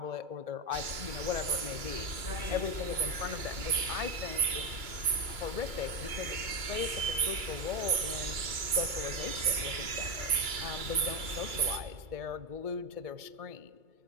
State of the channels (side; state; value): left; late; 2.3 ms